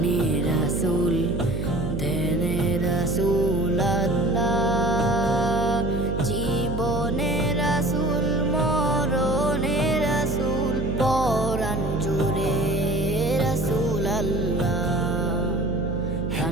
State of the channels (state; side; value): noise; right; hum, 3 dB below the sound